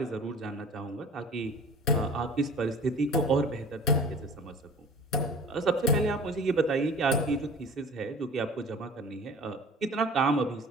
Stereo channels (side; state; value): both; normal; correlation 0.42